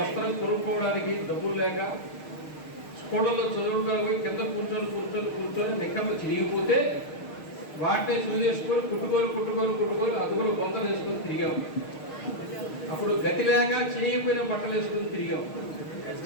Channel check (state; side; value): late; right; 6.5 ms